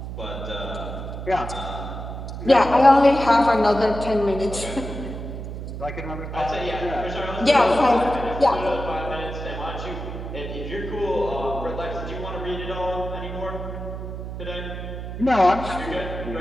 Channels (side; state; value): right; noise; hum, 8 dB below the sound